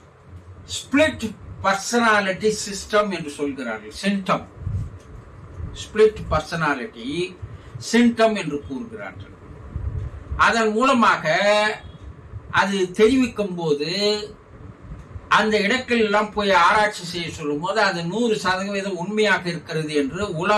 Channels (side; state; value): both; identical; correlation 1.00